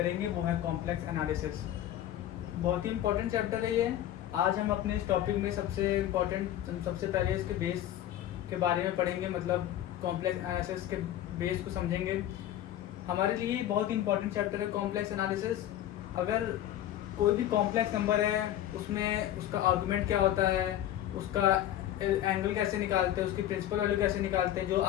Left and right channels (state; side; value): quieter; right; 12.3 dB